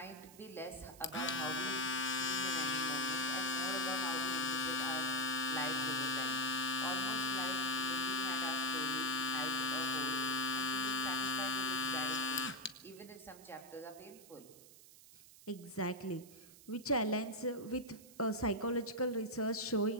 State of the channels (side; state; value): right; noise; hiss, 20 dB below the sound